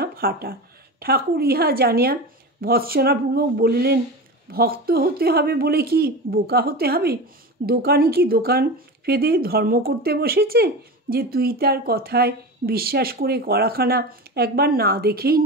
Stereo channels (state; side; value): normal; both; correlation 0.27